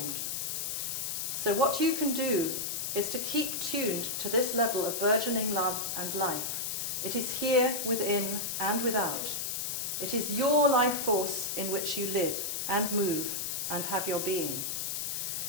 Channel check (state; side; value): noise; left; hiss, 2 dB below the sound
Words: So what you can do is to keep tuned to this level of burgeoning love and life. It is here within and without. It is your life force in which you live and move and have your being.